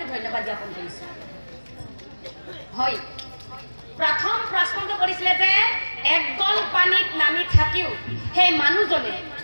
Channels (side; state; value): both; inverted; correlation -1.00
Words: ধন্যবাদ জ্ঞাপন কৰিছোঁ। হয়, প্ৰথম প্ৰশ্নটো কৰিছিলে যে এক গল পানীত নামি থাকিও সেই মানুহজনে